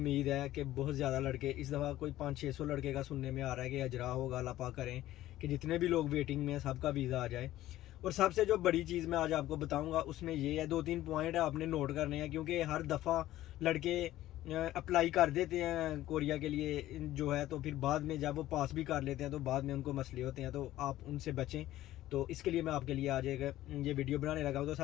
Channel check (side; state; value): right; quieter; 14.7 dB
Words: है कि बहुत ज़्यादा लड़के इस दफ़ा कोई 500-600 लड़के का सुनने में आ रहा है कि अजरा होगा। अल्लाह पाक करें कि जितने भी लोग वेटिंग में हैं सबका वीज़ा आ जाए। और सबसे जो बड़ी चीज़ मैं आज आपको बताऊंगा उसमें ये है, 2-3 पॉइंट है आपने नोट करने हैं। क्योंकि हर दफ़ा लड़के अप्लाई कर देते हैं कोरिया के लिए जो है, तो फिर बाद में जब वो पास भी कर लेते हैं तो बाद में उनको मसले होते हैं, तो आप उनसे बचें। तो इसके लिए मैं आपके लिए आज एक ये वीडियो बनाने लगा हूँ। तो